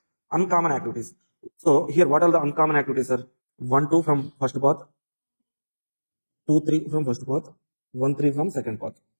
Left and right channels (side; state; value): both; inverted; correlation -1.00